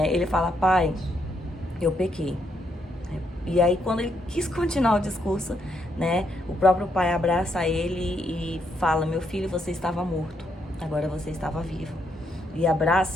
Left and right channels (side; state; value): both; normal; correlation 0.76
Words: ele fala: pai, eu pequei. E aí, quando ele quis continuar o discurso, né, o próprio pai abraça ele e fala: meu filho, você estava morto, agora você estava vivo. E